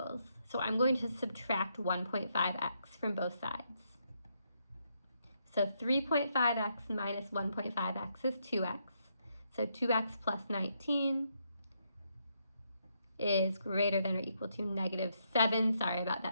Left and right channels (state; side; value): inverted; both; correlation -0.77